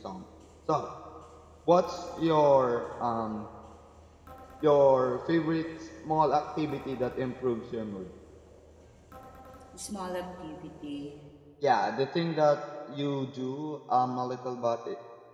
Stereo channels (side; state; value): both; identical; correlation 1.00